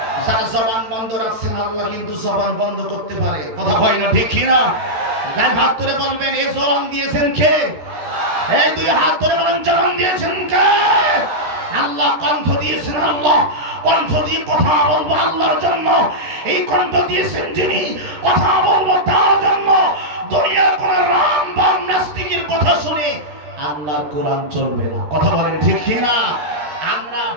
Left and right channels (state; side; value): late; left; 13 ms